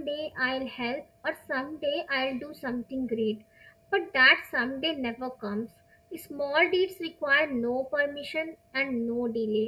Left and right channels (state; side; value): identical; both; correlation 1.00